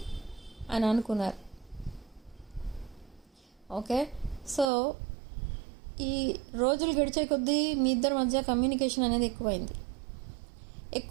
అని అనుకున్నారు. ఓకే. సో ఈ రోజులు గడిచే కొద్దీ మీ ఇద్దరి మధ్య కమ్యూనికేషన్ అనేది ఎక్కువైంది.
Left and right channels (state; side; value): drops out; left; at 4.7 s